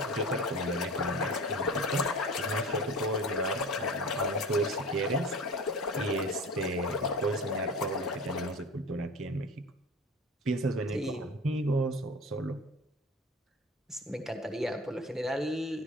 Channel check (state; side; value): normal; both; correlation 0.35